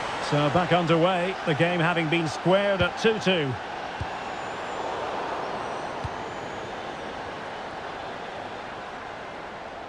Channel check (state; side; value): identical; both; correlation 1.00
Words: So back underway, the game having been squared at 2-2.